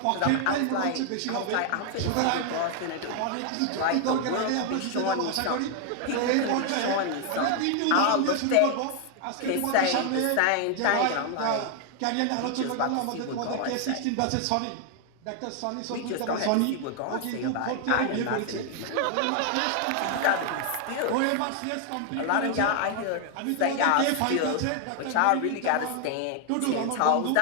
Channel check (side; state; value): both; different; correlation 0.00